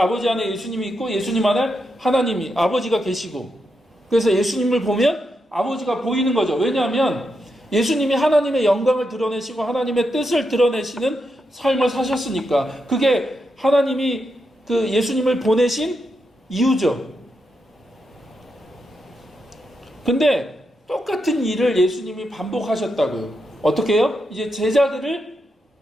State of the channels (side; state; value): both; normal; correlation 0.84